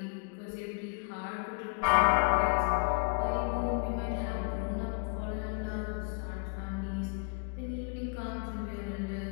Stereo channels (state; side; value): quieter; right; 35.4 dB